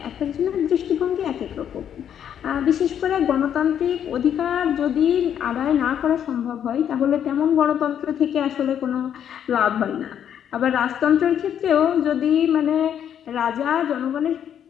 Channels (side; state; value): right; quieter; 9.3 dB